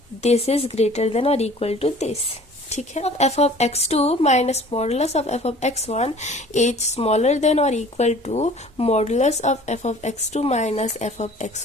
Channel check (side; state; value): both; normal; correlation 0.49